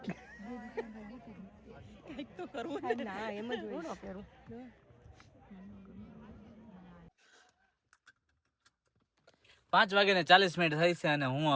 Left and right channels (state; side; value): identical; both; correlation 1.00